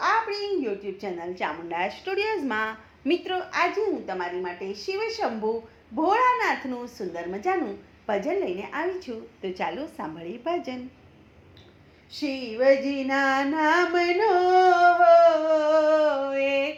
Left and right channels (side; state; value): both; identical; correlation 1.00